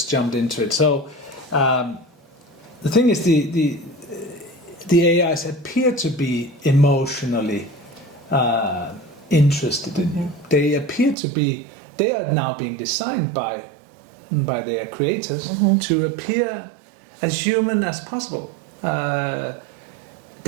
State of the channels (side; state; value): left; drops out; at 11.2 s